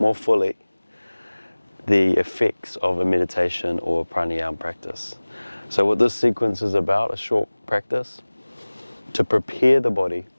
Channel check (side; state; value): both; inverted; correlation -1.00